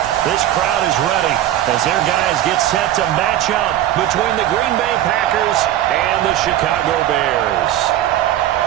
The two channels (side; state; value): left; quieter; 12.6 dB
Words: This crowd is ready as their guys get set to match up between the Green Bay Packers and the Chicago Bears.